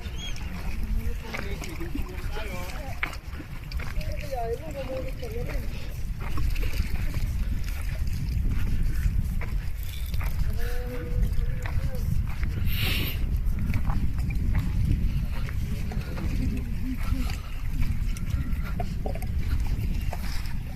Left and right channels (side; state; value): both; identical; correlation 1.00